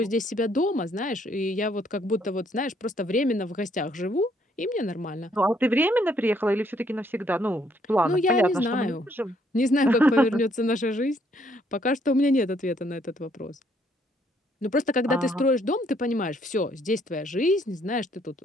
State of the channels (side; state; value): both; normal; correlation 0.68